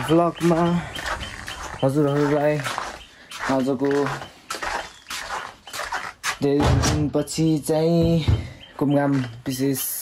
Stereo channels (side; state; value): both; identical; correlation 1.00